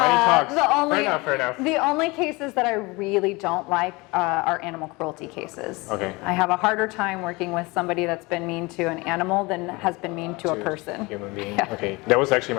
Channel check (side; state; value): right; quieter; 24.5 dB